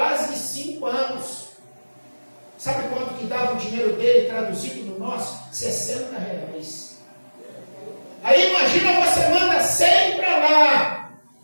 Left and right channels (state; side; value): inverted; both; correlation -1.00